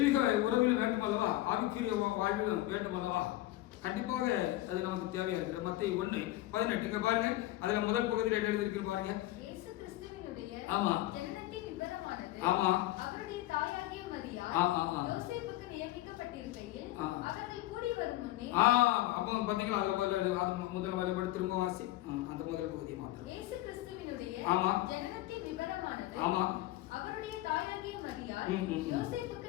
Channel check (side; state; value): right; quieter; 16.3 dB